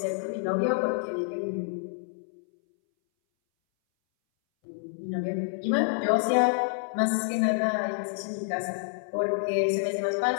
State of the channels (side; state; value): right; silent; 59 dB below the other